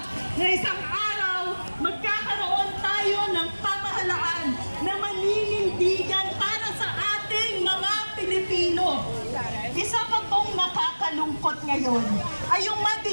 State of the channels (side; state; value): both; inverted; correlation -1.00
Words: na isang araw magkakaroon tayo ng pamahalaan na maninindigan para sa ating mga Pilipino. Isa pa pong nakakalungkot ngayon ay yung